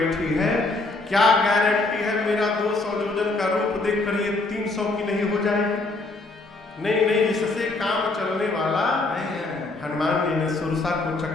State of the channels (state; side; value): quieter; right; 3.2 dB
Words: है, क्या गारंटी है मेरा 200 जोजन का रूप देखकर ये 300 की नहीं हो जाएगी? नहीं नहीं, इससे काम चलने वाला नहीं है। हनुमान जी ने सुरसा को